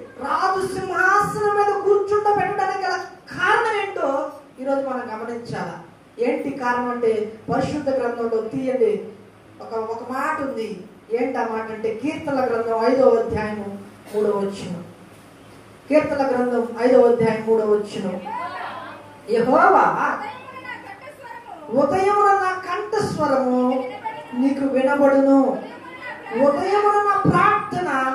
రాజు సింహాసనం మీద కూర్చుండబెట్టడానికి గల కారణం ఏంటో ఈరోజు మనం గమనించాలా. ఏంటి కారణం అంటే పరిశుద్ధ గ్రంథంలో తీయండి ఒక మాట ఉంది. ఏంటి ఆ మాట అంటే కీర్తనల గ్రంథం 5వ అధ్యాయము 3వ కీర్తన గ్రంథం 5వ అధ్యాయం 3వ యెహోవా ఉదయమున నా కంఠస్వరము నీకు వినబడును, ఉదయమున నా ప్రార్థన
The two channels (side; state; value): both; identical; correlation 1.00